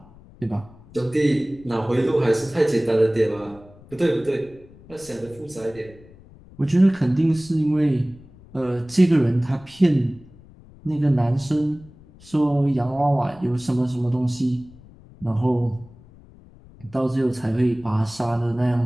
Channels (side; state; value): left; noise; rumble, 23 dB below the sound